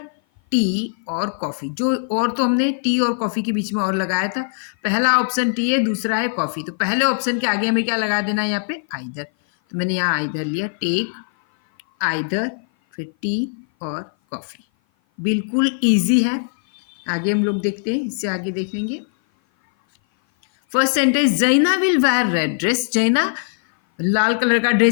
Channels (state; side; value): silent; right; 56 dB below the other